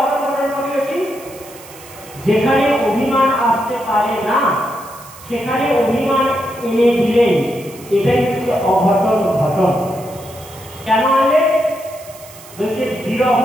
ঘটন করিয়েছি? যেখানে অভিমান আসতে পারে না সেখানে অভিমান এনে দিলেই এটাই হচ্ছে অঘটন ঘটন। কেন আনলে? বলছে বিরহ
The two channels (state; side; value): noise; right; hiss, 19 dB below the sound